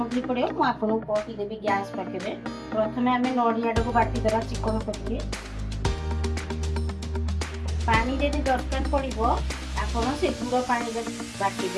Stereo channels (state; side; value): identical; both; correlation 1.00